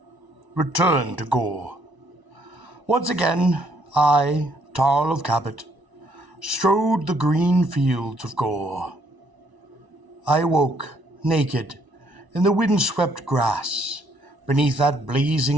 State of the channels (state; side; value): late; left; 1.0 ms